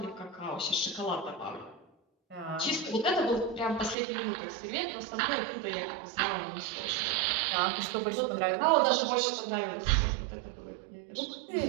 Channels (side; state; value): left; drops out; at 4.0 s